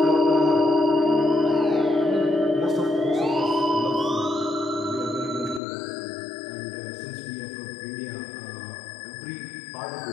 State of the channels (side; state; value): right; drops out; at 5.6 s